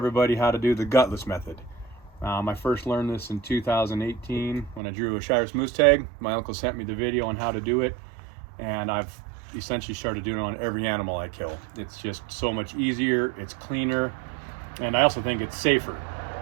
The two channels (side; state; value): left; drops out; at 4.8 s